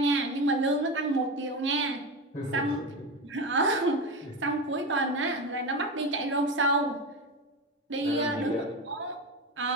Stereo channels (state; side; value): normal; both; correlation 0.21